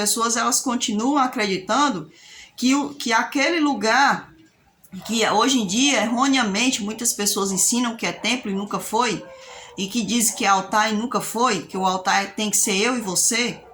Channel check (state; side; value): identical; both; correlation 1.00